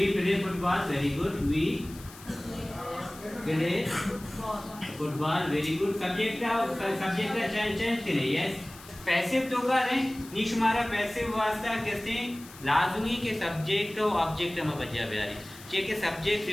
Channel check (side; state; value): left; noise; hiss, 19 dB below the sound